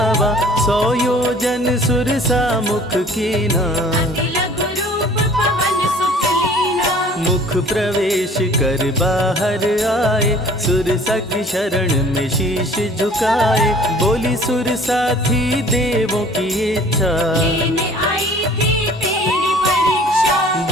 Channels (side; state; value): both; normal; correlation 0.51